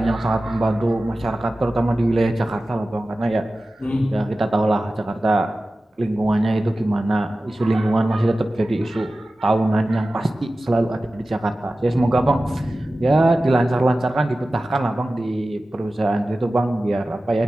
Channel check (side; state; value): both; normal; correlation 0.95